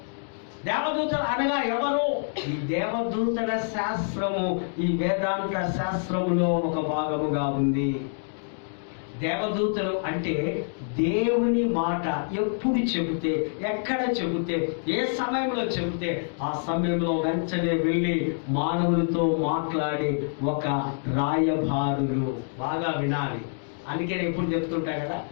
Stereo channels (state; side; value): silent; right; digital silence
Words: దేవదూతలు అనగా ఎవరు? ఈ దేవదూతల శాస్త్రము ఈ వేదాంత శాస్త్రములో ఒక భాగముగా ఉంది. దేవదూతలు అంటే దేవుని మాట ఎప్పుడు చెబితే, ఎక్కడ చెబితే, ఏ సమయంలో చెబితే ఆ సమయంలో వెంటనే వెళ్ళి మానవులతో మాట్లాడి ఒక రాయబారులు. బాగా వినాలి. అందుకే నేను ఎప్పుడు చెప్తుంటా కదా,